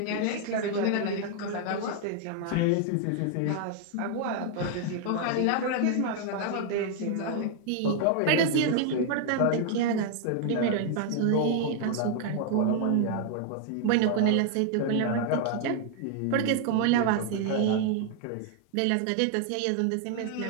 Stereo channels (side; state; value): both; different; correlation 0.00